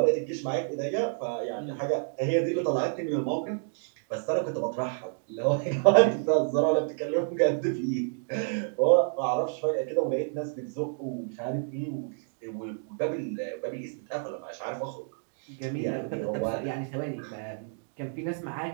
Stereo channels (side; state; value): left; silent; digital silence